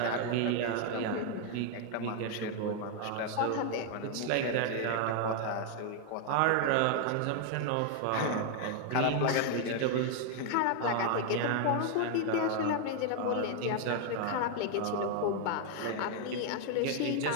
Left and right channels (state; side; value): different; both; correlation 0.00